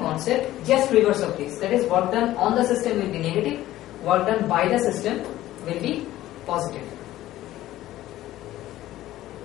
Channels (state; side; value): quieter; right; 14.8 dB